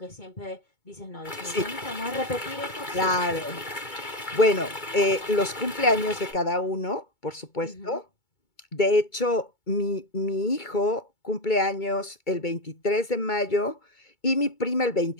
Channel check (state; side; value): late; right; 2.2 ms